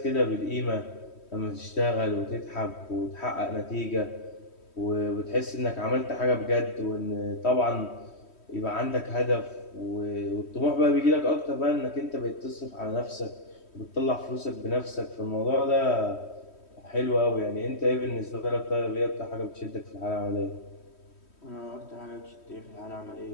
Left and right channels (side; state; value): right; late; 3.1 ms